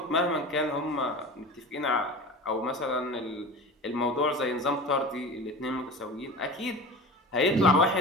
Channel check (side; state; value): both; normal; correlation 0.33